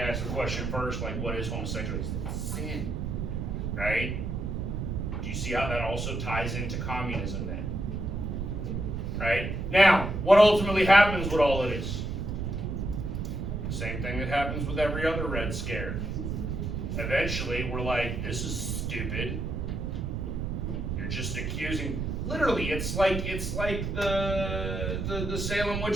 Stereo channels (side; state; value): right; noise; rumble, 2 dB below the sound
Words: the question first, like, what is homosexuality? It's sin. Right? Do you see how that also ties into communism then? Right? Now, what ultimately happens with all of this? The same thing that happens with every other Red Scare. Eventually, we're like, this is stupid. You're just accusing. Literally, it's like the Salem